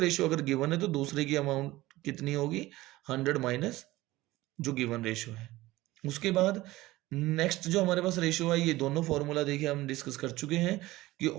अगर गिवन है तो दूसरे की अमाउंट कितनी होगी, 100 माइनस जो गिवन रेशियो है। उसके बाद नेक्स्ट जो हमारे पास रेशियो है, ये दोनों फॉर्मूला देखिए हम डिस्कस कर चुके हैं कि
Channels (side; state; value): left; quieter; 18.1 dB